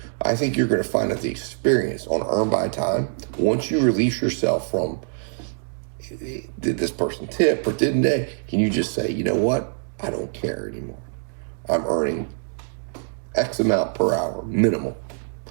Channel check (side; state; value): left; silent; 61 dB below the other